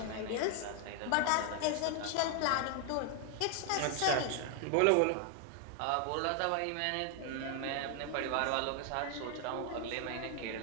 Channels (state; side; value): different; both; correlation 0.00